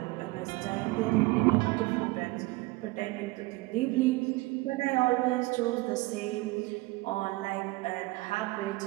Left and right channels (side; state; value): left; quieter; 21.8 dB